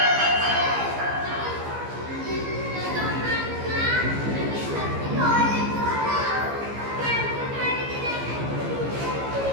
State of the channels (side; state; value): left; late; 15 ms